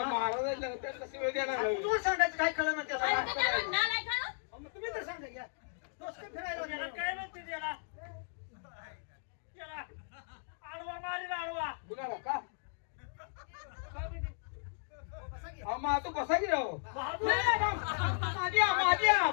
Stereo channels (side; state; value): right; silent; digital silence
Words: महाराजांना त्याला शिवाय द्यायला लागलं. तुम्हाला सांगायचं काय कळलं ना त्याला अरे त्याला नालायक आहे ना? अहो, मग तुम्ही तर सांगा घ्या डोसकं फिरायला लागलं. काय नसते त्याला आडवा मारील आडवा कुणाला का बसा की. हा, माझं बसा की राव बहादूर